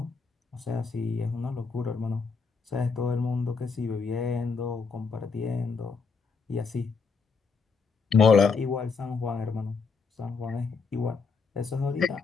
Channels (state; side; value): quieter; right; 5.0 dB